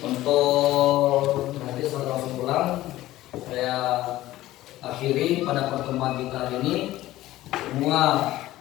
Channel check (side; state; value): right; quieter; 15.8 dB